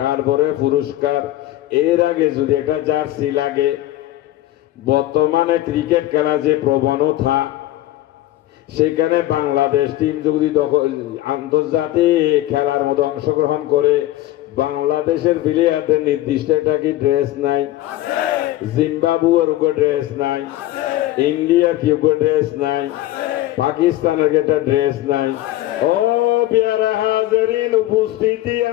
তারপরে পুরস্কার। এর আগে যদি একটা জার্সি লাগে, বর্তমানে ক্রিকেট খেলা যে প্রবণতা, সেখানে বাংলাদেশ টিম যদি আন্তর্জাতিক খেলার মধ্যে অংশগ্রহণ করে, বাংলাদেশের প্লেয়ারদের নির্দিষ্ট একটা কি ড্রেস নাই? জিম্বাবুয়ের উপর ড্রেস নাই, ইন্ডিয়ার কি উপর ড্রেস নাই, পাকিস্তানের একটা ড্রেস নাই। ও পেয়ারা হাজিরিন, উপস্থিতি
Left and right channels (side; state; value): right; quieter; 15.2 dB